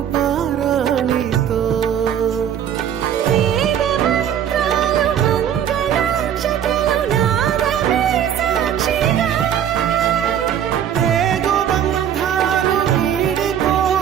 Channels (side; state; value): left; quieter; 9.5 dB